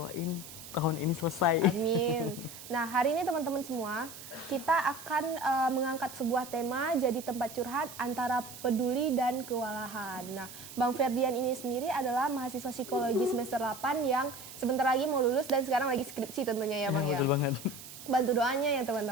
tahun ini selesai. Amin. Nah, hari ini teman-teman semua, kita akan mengangkat sebuah tema jadi tempat curhat antara peduli dan kewalahan. Nah, Bang Ferdian ini sendiri adalah mahasiswa psikologi semester 8 yang sebentar lagi mau lulus dan sekarang lagi skripsi tentunya ya Bang ya. Betul banget. Bantu doanya ya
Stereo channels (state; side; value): noise; right; hiss, 14 dB below the sound